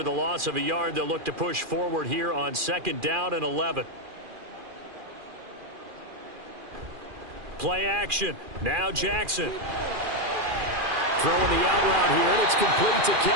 the loss of a yard, they'll look to push forward here on 2nd down and 11. Play action. Now Jackson. Throwing the out route here, and it's complete to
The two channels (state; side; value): late; left; 2.4 ms